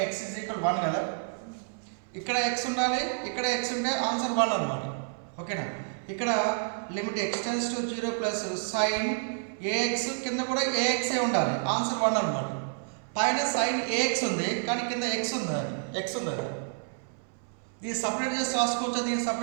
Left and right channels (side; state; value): left; silent; 58 dB below the other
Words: x is equal 1 కదా. ఇక్కడ x ఉండాలి, ఇక్కడ x ఉంటే ఆన్సర్ 1 అన్నమాట. ఓకేనా? ఇక్కడ limit extends to 0 plus sin ax కింద కూడా ax ఏ ఉండాలి, ఆన్సర్ 1 అన్నమాట. పైన sin ax ఉంది కానీ కింద x ఉంది. దీన్ని సపరేట్ చేసి రాసుకోవచ్చు,